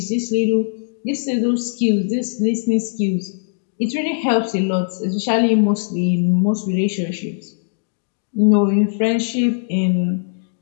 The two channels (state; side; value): silent; right; digital silence